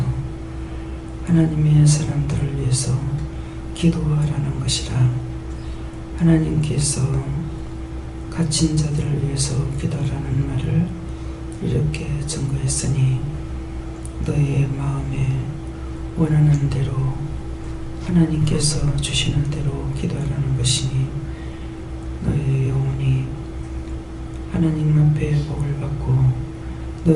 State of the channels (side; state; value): both; identical; correlation 1.00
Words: 하나님의 사람들을 위해서 기도하라는 것이라. 하나님께서 갇힌 자들을 위해서 기도하라는 말을 이렇게 증거했으니 너의 마음에 원하는 대로 하나님께서 주시는 대로 기도하라는 것이니 너의 영혼이 하나님 앞에 복을 받고